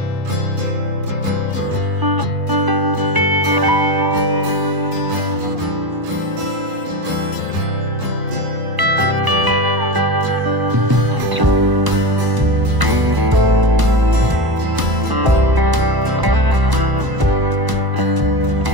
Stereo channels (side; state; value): left; late; 1.0 ms